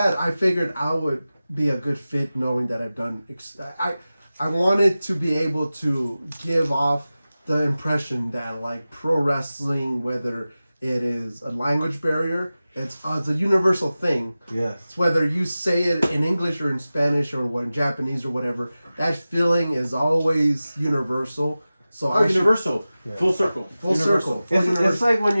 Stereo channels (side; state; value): both; inverted; correlation -0.96